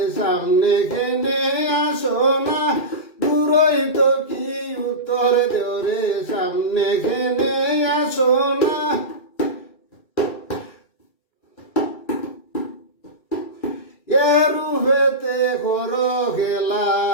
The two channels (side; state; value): right; late; 2.4 ms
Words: সামনে কেনে আসো না দূরই তো কি উত্তর দৌড়ে সামনে কেনে আসো না রূপেতে করো খেলা